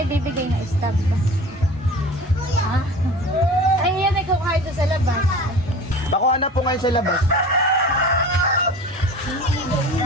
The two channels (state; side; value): normal; both; correlation 0.39